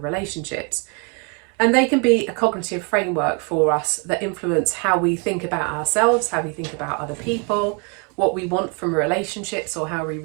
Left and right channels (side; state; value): left; quieter; 35.3 dB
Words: And they can be a cognitive framework for us that influence how we think about ourselves, how we think about other people, what we want from relationships, or how we